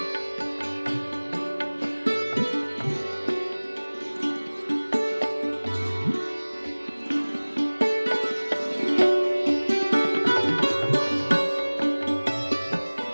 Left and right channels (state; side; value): inverted; both; correlation -1.00